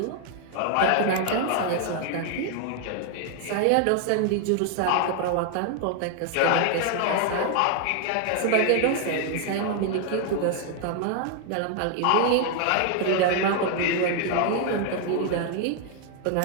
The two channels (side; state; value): both; different; correlation 0.00